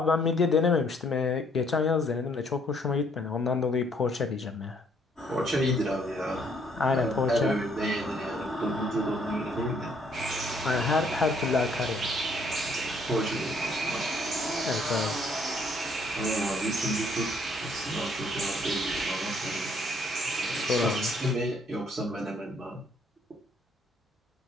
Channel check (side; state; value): both; normal; correlation 0.66